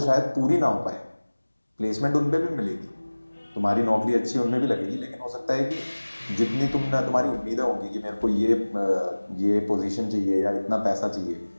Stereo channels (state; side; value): inverted; both; correlation -1.00